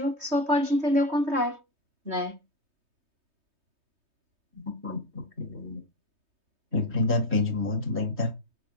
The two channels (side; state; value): left; late; 3.2 ms